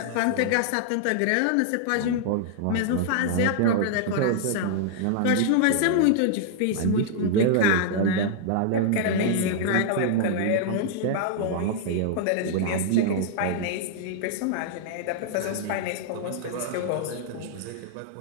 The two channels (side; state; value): both; different; correlation -0.01